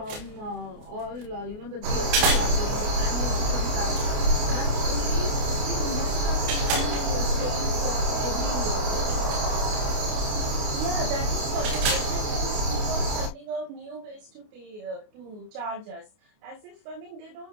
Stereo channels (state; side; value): late; left; 28 ms